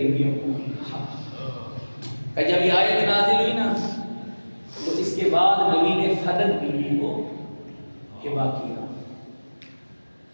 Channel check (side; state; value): both; inverted; correlation -1.00